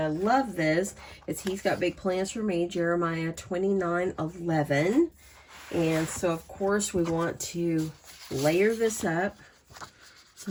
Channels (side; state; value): both; identical; correlation 1.00